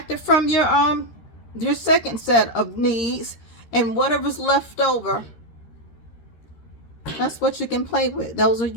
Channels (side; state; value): right; late; 13 ms